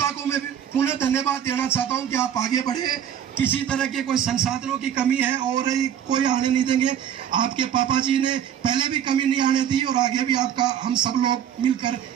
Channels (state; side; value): quieter; left; 9.4 dB